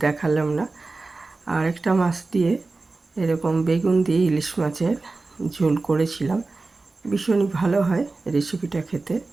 দেখালাম না। আর একটা মাছ দিয়ে এরকম বেগুন দিয়ে ইলিশ মাছের ঝোল করেছিলাম। ভীষণই ভালো হয় রেসিপিটা খেতে।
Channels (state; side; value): quieter; left; 3.6 dB